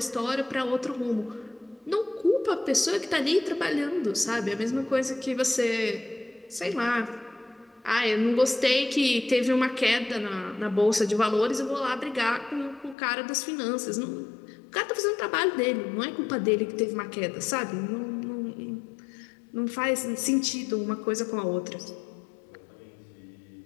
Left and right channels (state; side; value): drops out; right; at 13.0 s